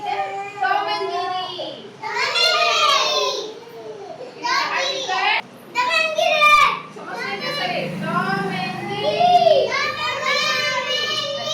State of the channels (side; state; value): both; identical; correlation 1.00